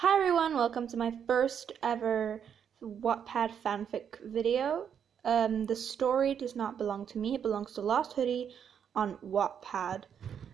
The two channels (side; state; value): left; quieter; 8.1 dB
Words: Hi everyone, welcome to my first ever Wattpad Fanfic video. The story does not belong to me, it belongs to Lost Hoodie on Wattpad.